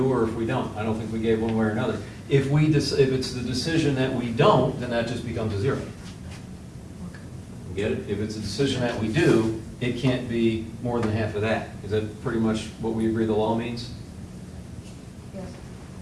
or if we don't. I don't think we gave one way or another. If it's the decision that we don't, then that just becomes a zero. Get it? If it's a decision that we do, it can't be more than half of that. Is that pretty much what we agree the law means? Yes.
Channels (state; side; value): identical; both; correlation 1.00